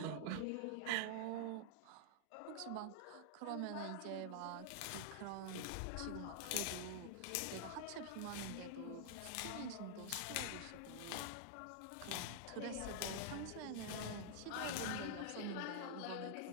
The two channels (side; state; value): both; different; correlation -0.01